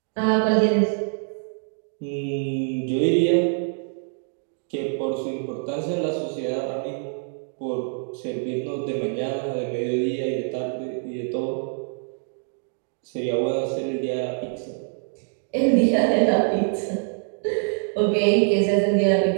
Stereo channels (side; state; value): left; silent; digital silence